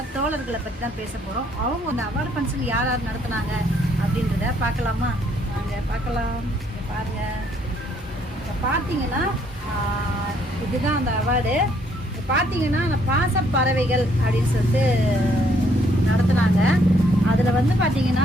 தோழர்களை பற்றி தான் பேச போகிறோம். அவங்க அந்த அவார்டு ஃபங்க்ஷன் யார் யார் நடத்துனாங்க அப்படின்றத பார்க்கலாமா? வாங்க பார்க்கலாம். பாருங்கள், இப்போ பார்த்தீங்கன்னா இதுதான் அந்த அவார்டு. பார்த்தீங்கன்னா அந்த பாசப்பறவைகள் அப்படின்னு சொல்லிட்டு நடத்துனாங்க. அதில் வந்து பார்த்தீங்கன்னா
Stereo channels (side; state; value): both; normal; correlation 0.67